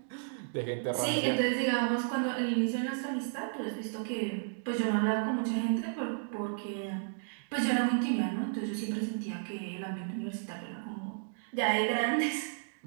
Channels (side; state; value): left; silent; digital silence